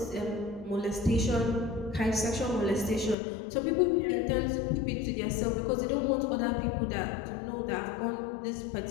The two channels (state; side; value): drops out; right; at 3.2 s